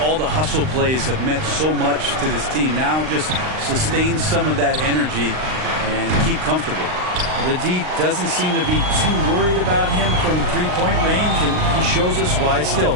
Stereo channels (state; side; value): late; left; 39 ms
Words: all the hustle plays have meant so much to this team. Now just sustain some of that energy and keep comfortable. The D doesn't seem to be too worried about him from three-point range, and he shows us why. Still,